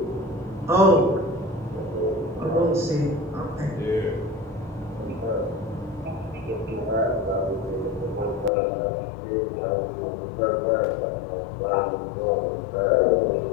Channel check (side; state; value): right; drops out; at 8.5 s